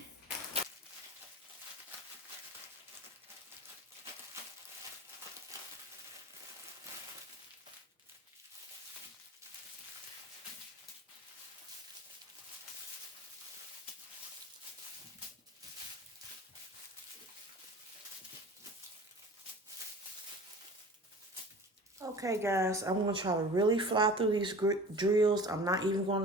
Okay, guys, I'm going to try to really fly through these drills. I'm not even going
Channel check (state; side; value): normal; both; correlation 0.40